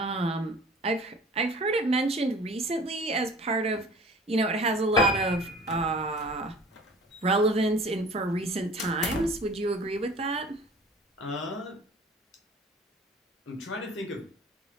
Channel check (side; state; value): both; normal; correlation 0.45